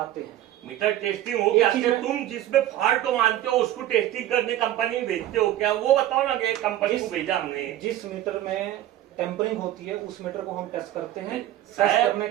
हैं। मीटर टेस्टिंग हो गया, तुम जिसमें फॉल्ट को मानते हो उसको टेस्टिंग करने कंपनी भेजते हो क्या? वो बताओ ना कि कंपनी को भेजा हमने। जिस मीटर में टेम्परिंग होती है उस मीटर को हम टेस्ट करते हैं। टेस्ट करने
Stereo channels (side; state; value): left; quieter; 13.4 dB